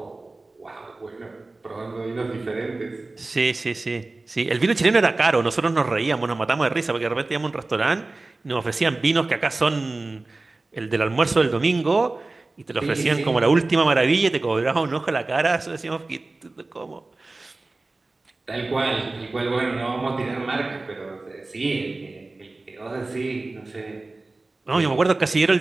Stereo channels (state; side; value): quieter; left; 3.2 dB